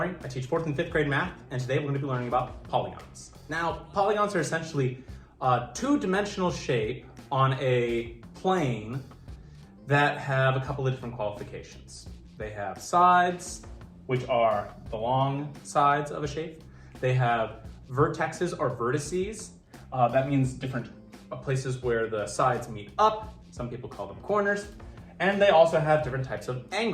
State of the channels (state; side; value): identical; both; correlation 1.00